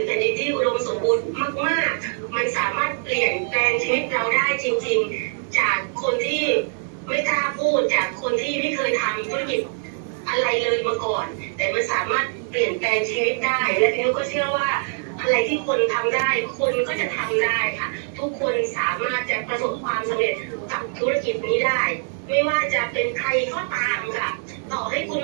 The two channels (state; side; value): silent; left; digital silence